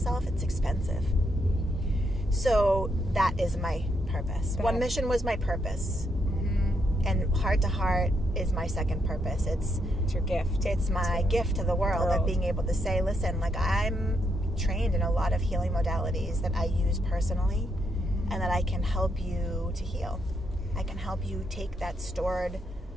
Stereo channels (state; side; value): normal; both; correlation 0.78